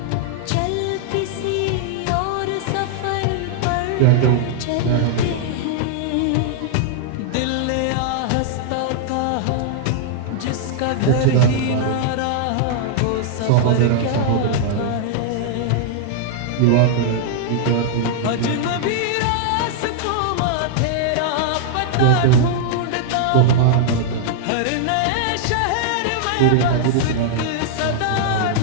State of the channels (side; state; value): both; different; correlation -0.01